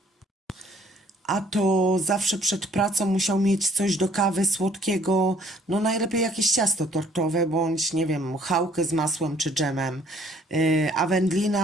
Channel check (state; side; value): normal; both; correlation 0.60